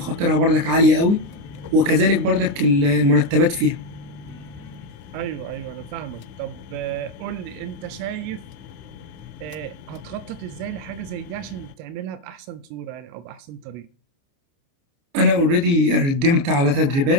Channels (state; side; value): late; left; 29 ms